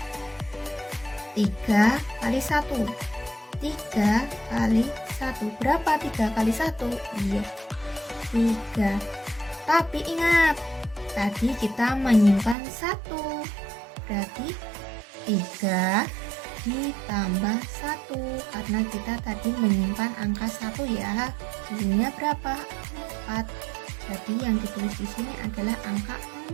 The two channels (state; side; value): drops out; left; at 12.6 s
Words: 3 kali 1. 3 kali 1. Berapa 3 kali 1? Iya, 3. Tapi ingat, tadi kita menyimpan 1. Berarti 3 ditambah 1. Karena kita tadi menyimpan angka 1 ya. Hasilnya berapa? 4. Jadi yang ditulis di sini adalah angka